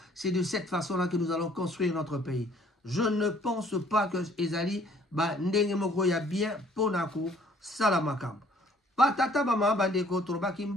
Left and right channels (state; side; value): normal; both; correlation 0.59